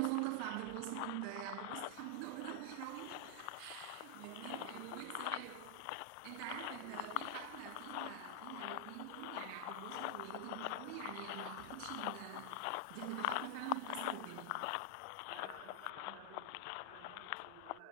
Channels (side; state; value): both; different; correlation 0.00